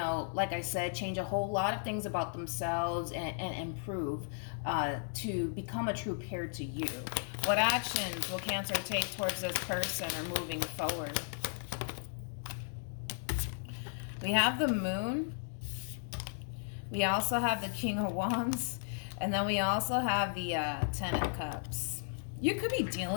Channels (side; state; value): right; silent; digital silence